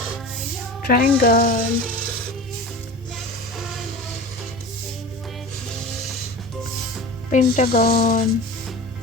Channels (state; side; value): normal; both; correlation 0.34